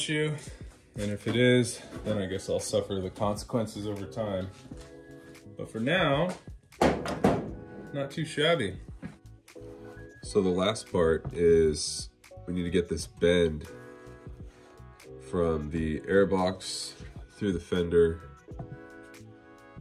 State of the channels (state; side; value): identical; both; correlation 1.00